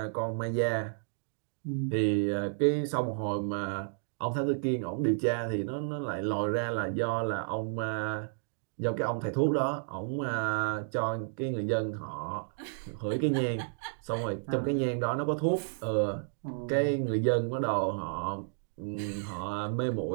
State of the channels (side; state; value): left; silent; digital silence